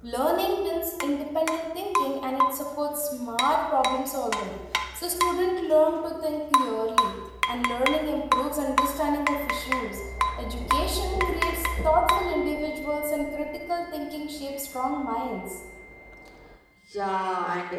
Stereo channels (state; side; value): identical; both; correlation 1.00